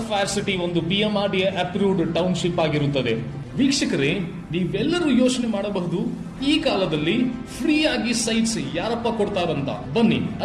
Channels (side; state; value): both; identical; correlation 1.00